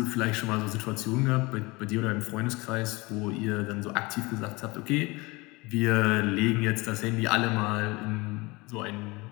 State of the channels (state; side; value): quieter; right; 24.1 dB